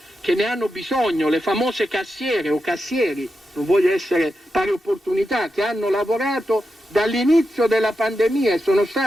che ne hanno bisogno, le famose cassiere o cassieri, non voglio essere pari opportunità, che hanno lavorato dall'inizio della pandemia e sono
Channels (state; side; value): normal; both; correlation 0.88